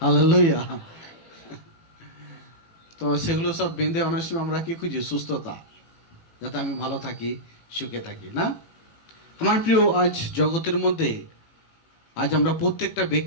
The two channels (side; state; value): right; late; 18 ms